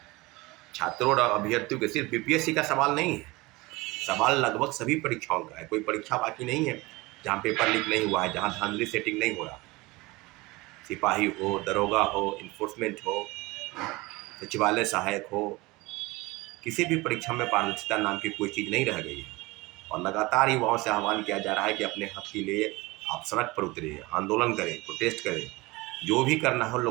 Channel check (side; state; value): left; quieter; 22.4 dB